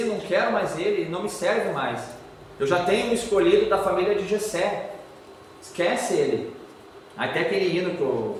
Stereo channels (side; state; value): both; identical; correlation 1.00